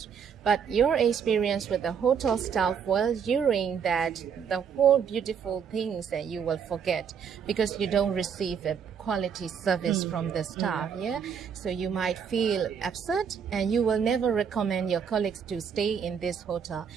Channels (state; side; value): quieter; left; 7.2 dB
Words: But your experience with the hotel staff, well, during that, the whole beautiful things that you will forget because you don't receive a quality service from the staff, yeah? So you might feel upset and you will never recommend your colleagues to stay in this hotel.